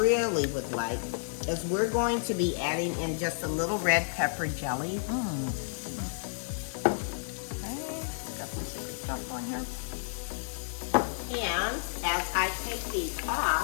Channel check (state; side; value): silent; right; digital silence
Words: would like is we're going to be adding in just a little red pepper jelly. Okay, got some secret stuff going here. And as I take these